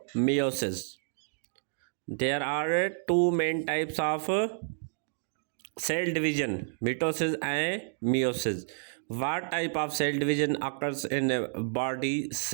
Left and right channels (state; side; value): silent; left; digital silence